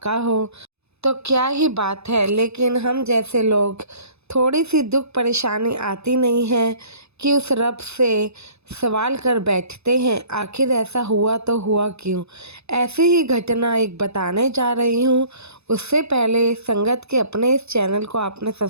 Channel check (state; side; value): late; left; 0.79 ms